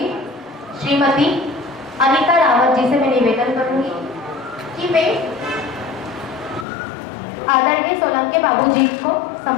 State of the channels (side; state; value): right; drops out; at 6.7 s